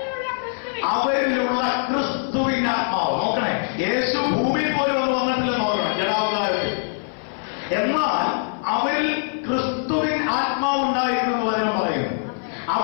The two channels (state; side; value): silent; right; 58 dB below the other